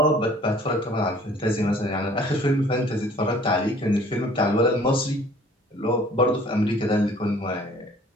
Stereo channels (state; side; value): normal; both; correlation 0.53